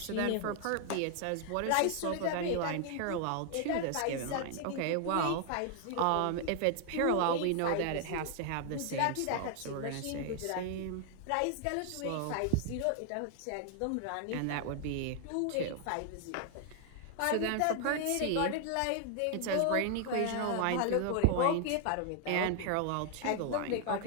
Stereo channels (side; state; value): both; different; correlation 0.00